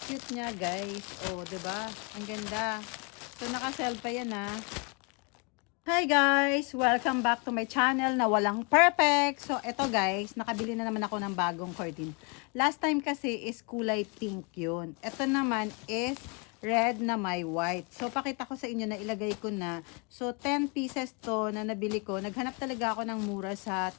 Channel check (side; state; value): right; quieter; 33.6 dB